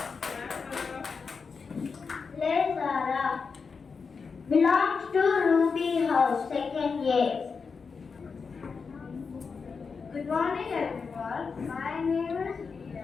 Play Zara. Belongs to Ruby House, second year. Good morning everyone. My name is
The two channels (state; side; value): quieter; right; 5.2 dB